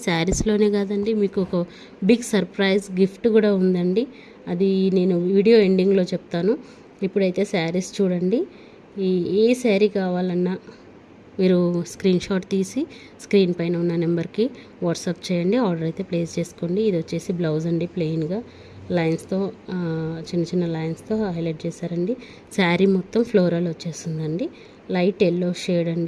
శారీస్లోనే కాదండి, మీకు ఒక బిగ్ సర్ప్రైజ్ గిఫ్ట్ కూడా ఉందండి. అది నేను వీడియో ఎండింగ్లో చెప్తాను. ఇప్పుడైతే శారీస్ చూడండి. ఏ శారీ కావాలన్నా మీరు స్క్రీన్ షాట్ తీసి స్క్రీన్ పైన ఉన్న నెంబర్కి వాట్సాప్ చేయండి. ఆర్డర్ అయితే ప్లేస్ చేసుకోండి. ఇది వచ్చేసి బ్లౌజ్ అండి, ప్లెయిన్గా లైన్స్తో చిన్న లైన్స్తో హైలైట్ చేశారండి. శారీ మొత్తం ఫ్లోరల్ వచ్చేస్తుందండి. లైట్ ఎల్లో షేడ్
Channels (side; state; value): both; identical; correlation 1.00